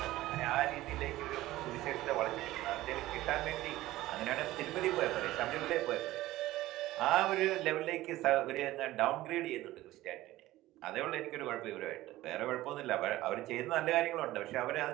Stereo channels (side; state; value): left; quieter; 16.5 dB